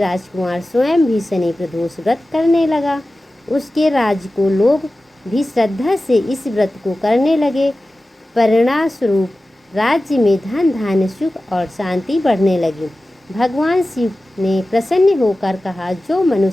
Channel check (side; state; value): both; normal; correlation 0.95